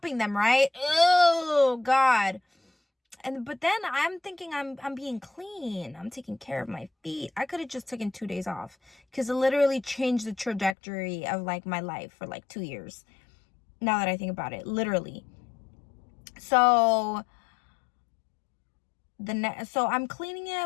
them, right? Oh, God. But then I'm thinking I'm being clean. I'm taking care of my feet. I could have just taken 2 days off because it literally changed the trajectory of like my life for like 2 years. Now that I think about it, literally. So so I'm cleaning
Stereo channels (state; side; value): drops out; right; at 10.8 s